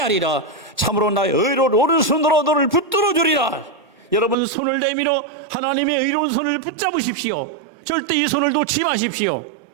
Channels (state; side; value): drops out; left; at 4.4 s